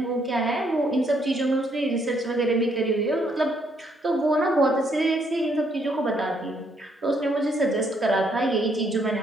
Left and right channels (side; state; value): both; normal; correlation 0.71